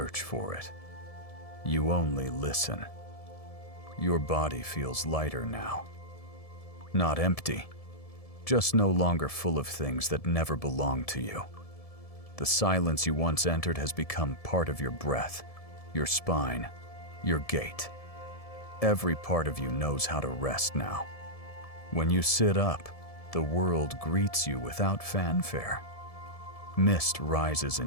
for it. You only listen. Your body feels lighter now. Not empty, just no longer full of things that never belonged to you. The silence you once entered has become part of your breath, your spine, your gait. Every part of you knows how to rest now. When you sit up, the world greets you without fanfare. Mist rises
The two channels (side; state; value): right; late; 1.7 ms